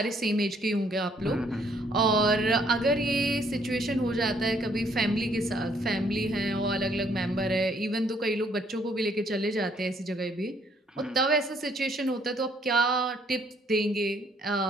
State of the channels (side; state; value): both; normal; correlation 0.66